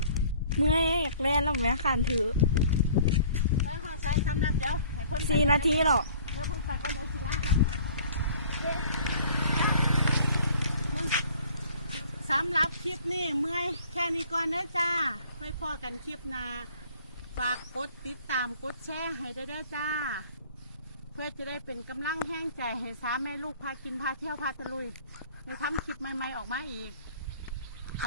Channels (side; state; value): both; inverted; correlation -0.52